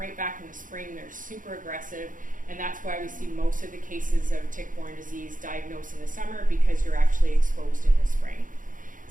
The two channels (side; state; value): left; late; 0.39 ms